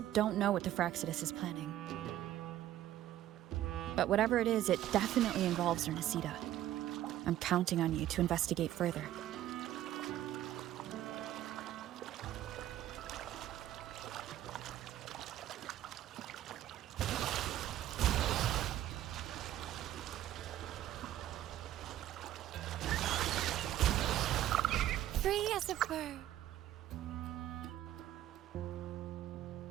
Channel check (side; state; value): left; quieter; 12.9 dB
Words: don't know what the Fraxidus is planning. But whatever it is, it definitely involves Ernestida. I'm counting on you to investigate further. Free as a bird.